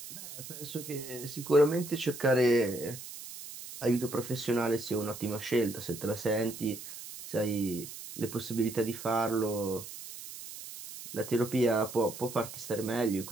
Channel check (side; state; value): right; noise; hiss, 12 dB below the sound